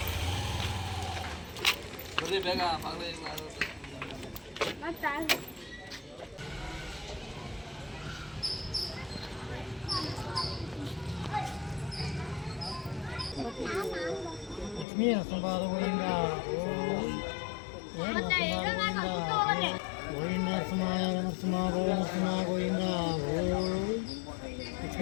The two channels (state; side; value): drops out; right; at 14.9 s